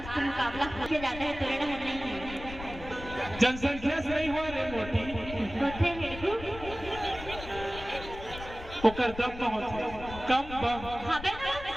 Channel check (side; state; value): left; noise; rumble, 12 dB below the sound